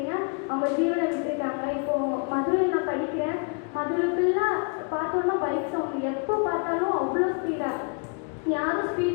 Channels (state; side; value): quieter; right; 36.7 dB